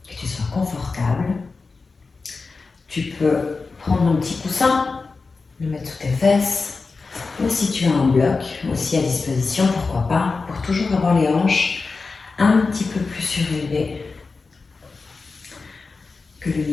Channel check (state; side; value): quieter; right; 4.2 dB